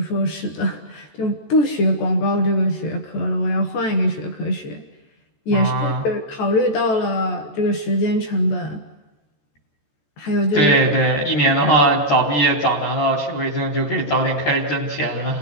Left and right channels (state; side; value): late; right; 14 ms